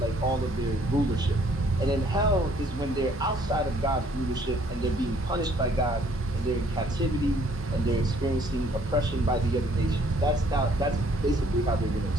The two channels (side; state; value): both; normal; correlation 0.62